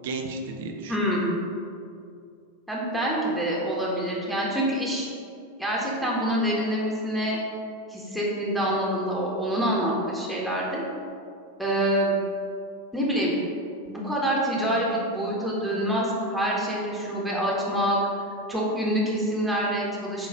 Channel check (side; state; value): both; normal; correlation 0.19